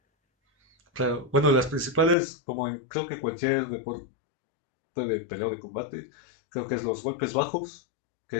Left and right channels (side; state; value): right; drops out; at 2.1 s